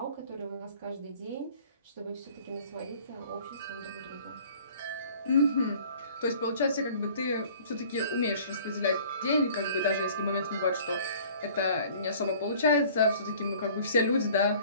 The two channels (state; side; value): inverted; both; correlation -0.51